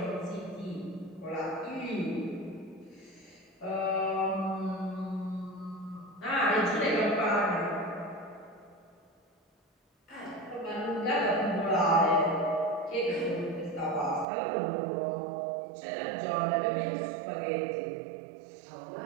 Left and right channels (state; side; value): drops out; left; at 14.2 s